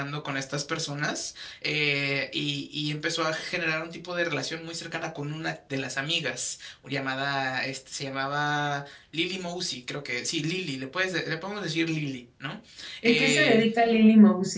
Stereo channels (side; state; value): both; identical; correlation 1.00